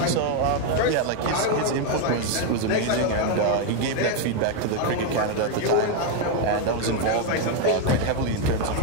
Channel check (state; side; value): different; both; correlation 0.01